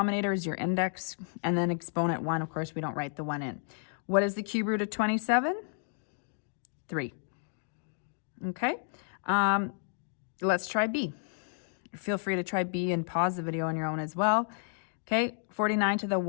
is your index, and then exponent 1, of course, we don't write the 1 in. What is the cube root of 27? 3. Okay, let's try B. Feel free to try B and pause the video on your own as well. Okay, 49 to the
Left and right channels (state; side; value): silent; right; 57 dB below the other